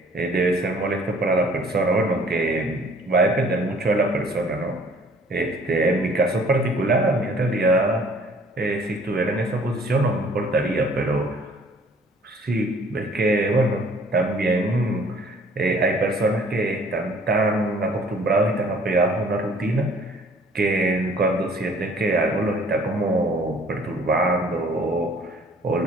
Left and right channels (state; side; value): normal; both; correlation 0.55